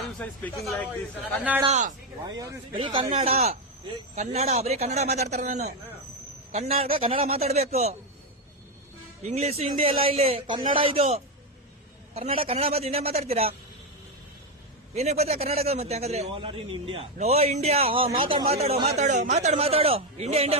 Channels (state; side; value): normal; both; correlation 0.07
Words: ಕನ್ನಡ ಬರೀ ಕನ್ನಡ ಬರೀ ಕನ್ನಡ ಮಾತಾಡ್ತಾರೆ. ನಾನು ಕನ್ನಡ ಮಾತಾಡ್ಬೇಕು. ಇಂಗ್ಲಿಷ್ ಹಿಂದಿ ಎಲ್ಲ ಇಲ್ಲಿ ಕನ್ನಡ. ಇದು ಕನ್ನಡ ಮತ್ತೆ ಇಂಡಿಯಾ ಮಾತಾಡ್ತೀರಾ? ಏನಕ್ಕೆ ಬರ್ತೀರಾ ಕರ್ನಾಟಕ? ಮತ್ತೆ ಹಂಗಾದ್ರೆ ನೋ ಇಂಡಿಯಾ. ಮಾತಾಡು ಇಂಡಿಯಾ ಮಾತಾಡು. ಹಿಂದಿ